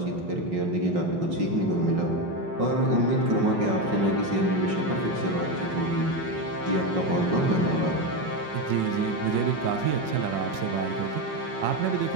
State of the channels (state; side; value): late; left; 5.5 ms